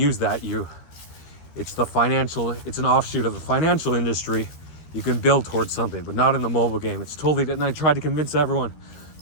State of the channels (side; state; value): right; late; 13 ms